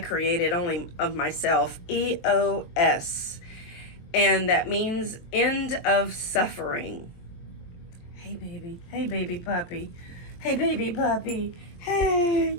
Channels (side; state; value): right; late; 23 ms